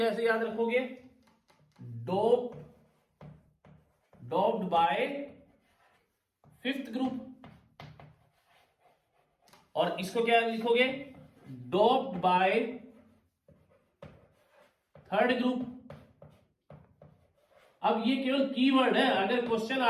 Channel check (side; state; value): both; identical; correlation 1.00